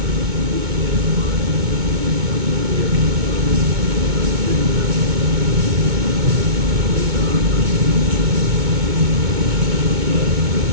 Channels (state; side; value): late; left; 2.2 ms